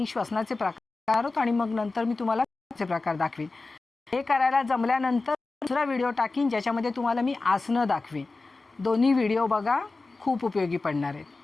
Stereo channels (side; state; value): right; quieter; 3.6 dB